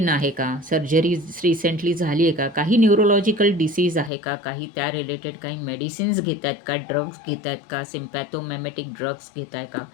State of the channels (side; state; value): right; drops out; at 4.1 s